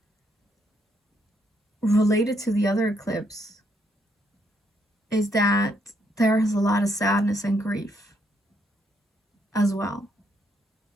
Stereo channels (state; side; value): normal; both; correlation 0.74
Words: related to the other eclipse, is that there is a lot of sadness and grief as well.